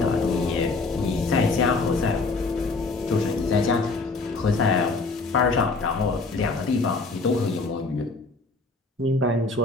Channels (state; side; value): quieter; right; 3.6 dB